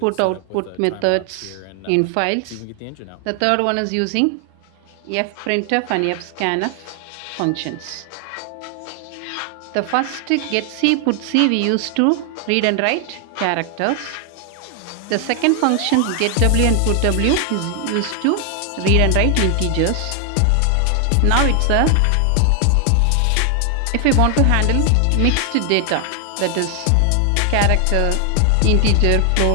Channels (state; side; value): different; both; correlation 0.00